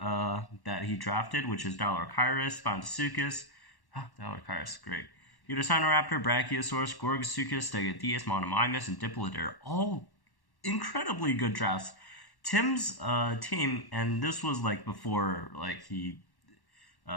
that he drafted, which is Dilorchirus, Spondysukis, Dilorchirus, great, Utassinoraptor, Brachiosaurus, Gorgosuchus, Stegodeus, Monomimus, and Diplodocer, all incredibly good drafts. Tim's team, and this was like before he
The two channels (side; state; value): right; late; 1.1 ms